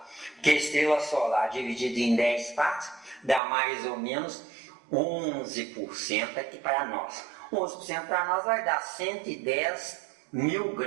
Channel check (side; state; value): left; drops out; at 3.4 s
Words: Porque a estrela solar dividida em 10 partes dá mais ou menos 11% aqui para nós. 11% para nós vai dar 110 mil